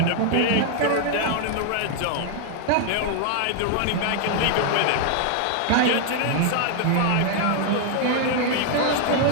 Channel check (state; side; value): different; both; correlation 0.00